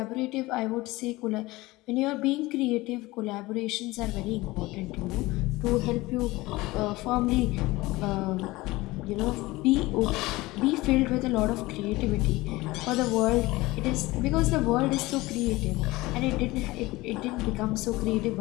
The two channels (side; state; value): right; quieter; 20.2 dB